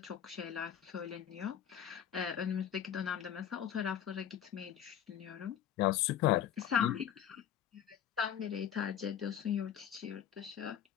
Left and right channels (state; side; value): quieter; right; 9.7 dB